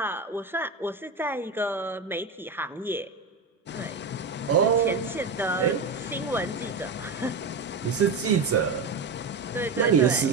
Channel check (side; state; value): left; quieter; 4.2 dB